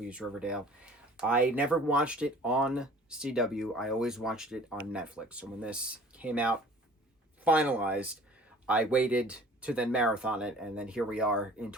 Riverdale. I never watched it on CW. I always watched it on Netflix. So when this came out, finalized, I waited to then marathon it, and then here we are in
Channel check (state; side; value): normal; both; correlation 0.48